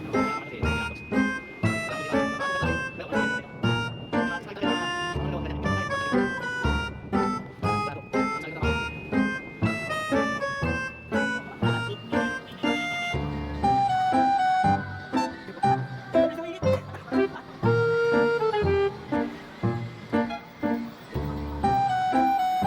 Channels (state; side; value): identical; both; correlation 1.00